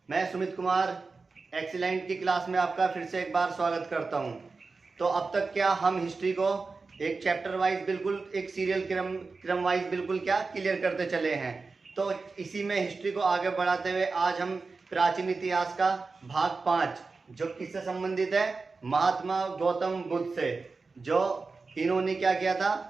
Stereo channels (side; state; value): left; quieter; 4.1 dB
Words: मैं सुमित कुमार एक्सीलेंट की क्लास में आपका फिर से एक बार स्वागत करता हूं। तो अब तक क्या हम हिस्ट्री को एक चैप्टर वाइज बिल्कुल एक सीरियल क्रम वाइज बिल्कुल क्या क्लियर करते चले हैं। तो इसी में हिस्ट्री को आगे बढ़ाते हुए आज हम प्राचीन इतिहास का भाग 5 जो किससे संबंधित है, महात्मा गौतम बुद्ध से, जो इन्होंने क्या किया था,